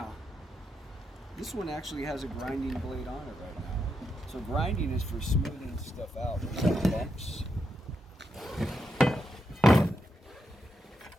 this one actually has a grinding blade on it right now. So grinding is for smoothing stuff out. Some bumps.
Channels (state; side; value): normal; both; correlation 0.83